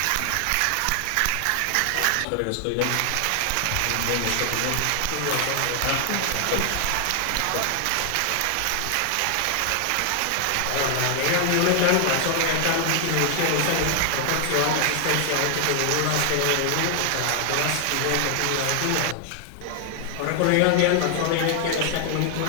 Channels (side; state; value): both; different; correlation 0.00